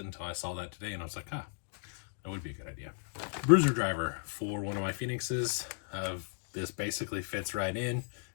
until I saw that today, and I was like, that would be a good idea. Bruiser driver for one of my Phoenixes. This basically fits right in.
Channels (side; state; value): right; silent; digital silence